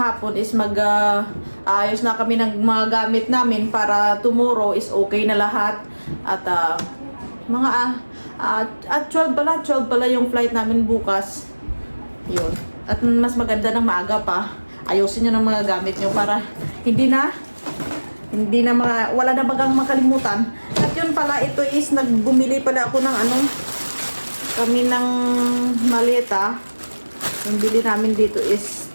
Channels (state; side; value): inverted; both; correlation -1.00